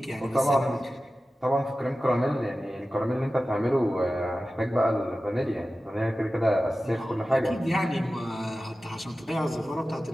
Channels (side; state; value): both; normal; correlation 0.95